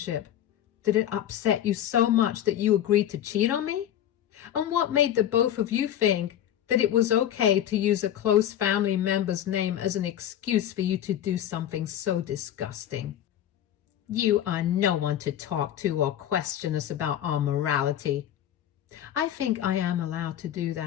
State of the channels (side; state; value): right; quieter; 11.1 dB